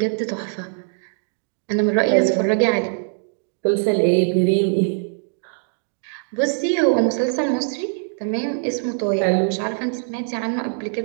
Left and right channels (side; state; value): left; silent; 58 dB below the other